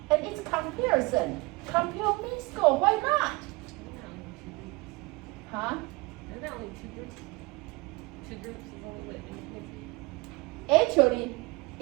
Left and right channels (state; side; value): quieter; left; 25.0 dB